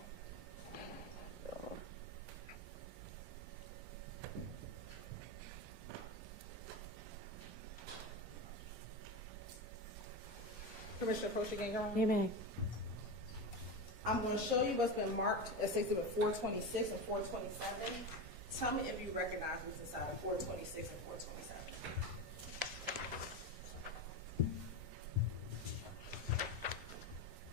Permission to approach again, Your Honor? You may. I'm going to show you what's been marked as Exhibit 426 and 427. Tell me if you recognize what's inside of 426 and 427.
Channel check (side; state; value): both; normal; correlation 0.20